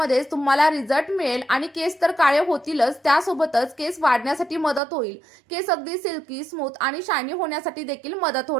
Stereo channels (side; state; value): left; drops out; at 4.8 s